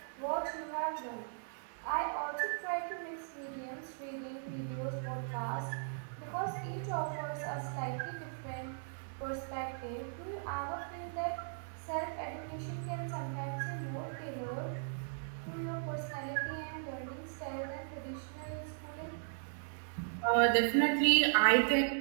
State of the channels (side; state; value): left; silent; digital silence